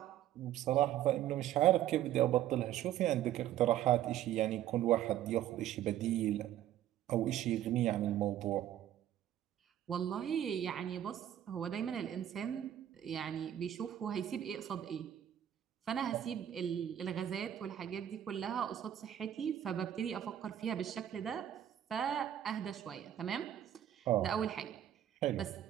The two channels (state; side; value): quieter; left; 11.4 dB